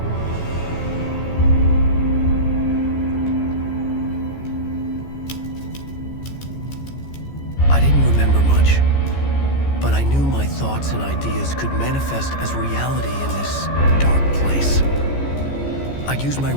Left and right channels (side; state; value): right; late; 14 ms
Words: I didn't remember much, but I knew my thoughts and ideas could manifest as reality in this dark place. I'd use my